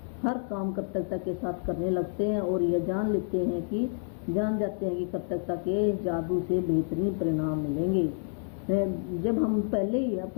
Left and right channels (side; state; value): right; silent; digital silence